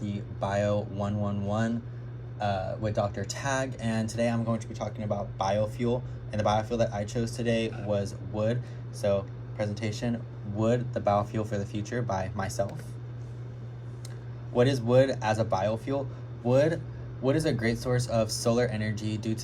Bio 111 with Dr. Tag, and today I'm going to be talking about biofuel. And the biofuel that I chose today was wood. So, presentation, Wood, the Biofuel for the Future by myself. What is wood as a biofuel? Wood is a great source of solar energy due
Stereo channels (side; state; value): both; identical; correlation 1.00